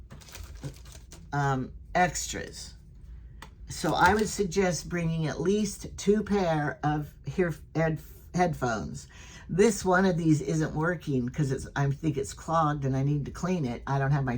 extras. So I would suggest bringing at least 2 pair of headphones. This one of these isn't working because I think it's clogged and I need to clean it. I don't have my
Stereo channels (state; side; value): identical; both; correlation 1.00